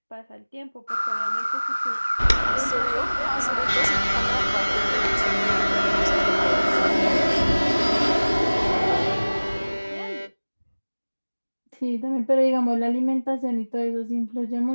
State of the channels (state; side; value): inverted; both; correlation -1.00